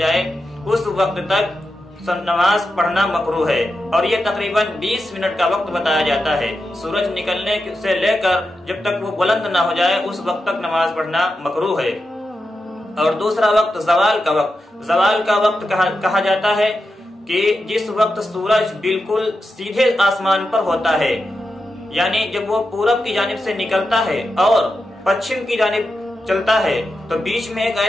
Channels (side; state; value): both; normal; correlation 0.89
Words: اس وقت تک نماز پڑھنا مکروہ ہے، اور یہ تقریباً 20 منٹ کا وقت بتایا جاتا ہے۔ سورج نکلنے سے لے کر جب تک وہ بلند نہ ہو جائے اس وقت تک نماز پڑھنا مکروہ ہے۔ اور دوسرا وقت زوال کا وقت۔ زوال کا وقت کہا جاتا ہے کہ جس وقت سورج بالکل سیدھے آسمان پر ہوتا ہے، یعنی جب وہ پورب کی جانب سے نکلتا ہے اور پچھم کی جانب چلتا ہے تو بیچ میں ایک